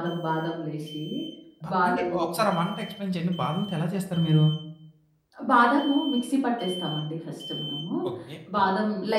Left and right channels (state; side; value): identical; both; correlation 1.00